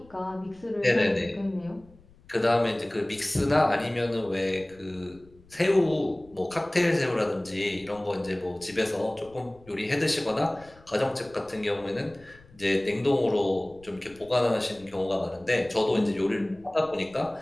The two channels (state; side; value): noise; left; rumble, 26 dB below the sound